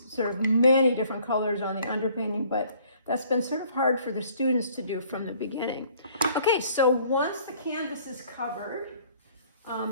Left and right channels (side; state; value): both; inverted; correlation -0.58